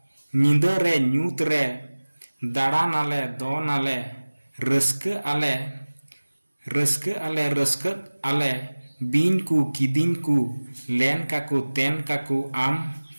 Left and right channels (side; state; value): both; inverted; correlation -1.00